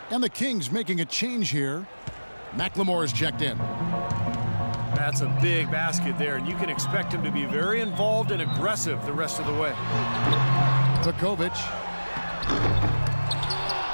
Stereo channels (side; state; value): both; inverted; correlation -1.00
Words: And the Kings making a change here. McLemore is checked in. That's a big basket there, and you can expect him to be very involved and aggressive the rest of the way. Vukovic.